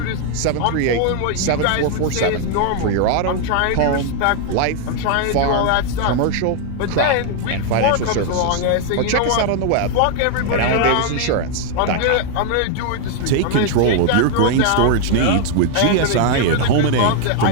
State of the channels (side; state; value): both; different; correlation 0.00